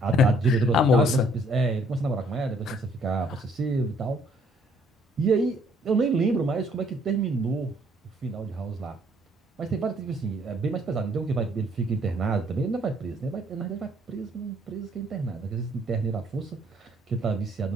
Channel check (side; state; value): both; normal; correlation 0.64